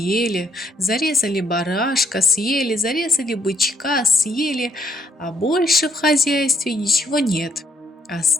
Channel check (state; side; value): normal; both; correlation 0.69